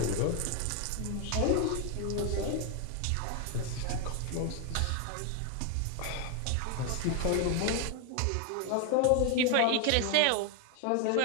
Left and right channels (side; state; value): both; different; correlation 0.01